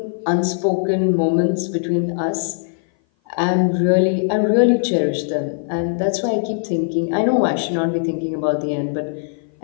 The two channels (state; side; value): silent; right; 57 dB below the other